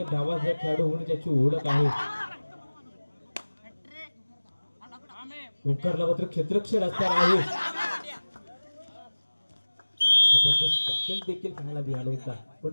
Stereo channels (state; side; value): inverted; both; correlation -1.00